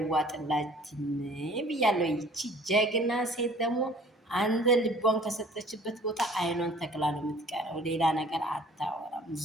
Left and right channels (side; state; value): both; normal; correlation 0.52